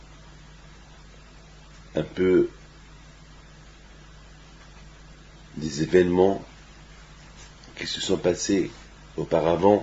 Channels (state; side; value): identical; both; correlation 1.00